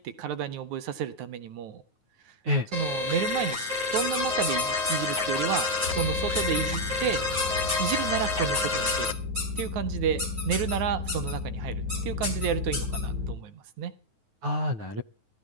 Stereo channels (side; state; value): left; late; 9.4 ms